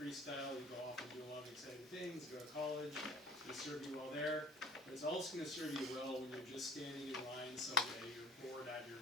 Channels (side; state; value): both; normal; correlation 0.45